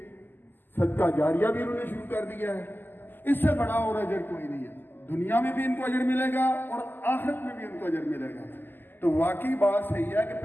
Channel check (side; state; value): right; late; 0.091 ms